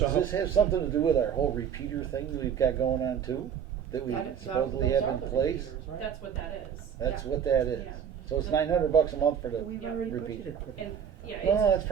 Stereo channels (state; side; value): quieter; left; 8.1 dB